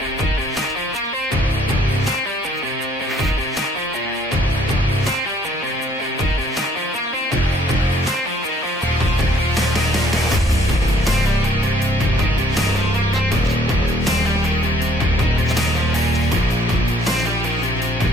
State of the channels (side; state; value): both; normal; correlation 0.61